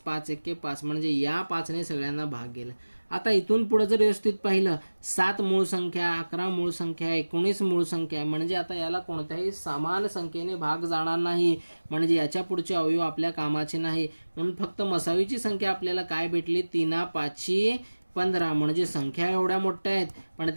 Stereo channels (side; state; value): both; inverted; correlation -1.00